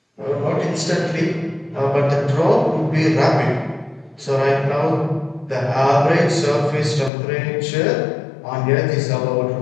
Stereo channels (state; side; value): drops out; right; at 7.1 s